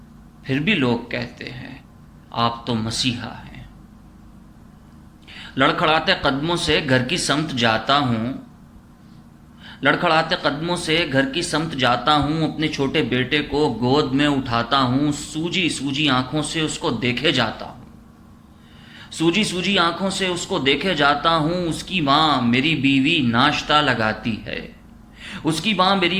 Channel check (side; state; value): both; identical; correlation 1.00